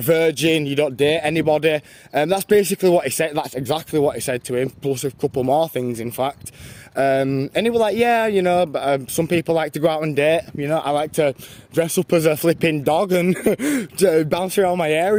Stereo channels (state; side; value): identical; both; correlation 1.00